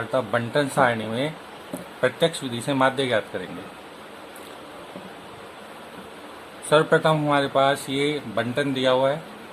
बंटन सारणी में प्रत्यक्ष विधि से माध्य ज्ञात करेंगे। सर्वप्रथम हमारे पास ये बंटन दिया हुआ है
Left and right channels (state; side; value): identical; both; correlation 1.00